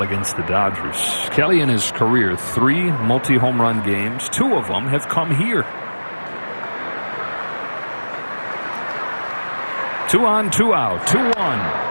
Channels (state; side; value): inverted; both; correlation -1.00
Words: against the Dodgers. Kelly in his career, 3 multi-home run games. 2 of them have come here. 2 on, 2 out,